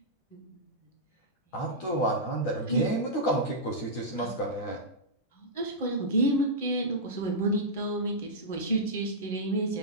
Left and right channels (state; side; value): late; right; 11 ms